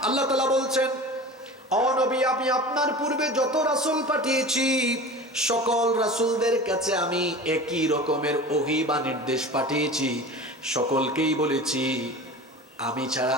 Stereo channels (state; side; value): normal; both; correlation 0.35